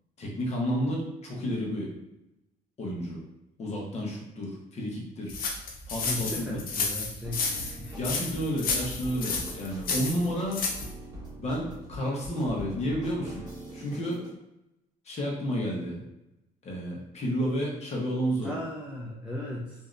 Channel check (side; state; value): both; normal; correlation 0.53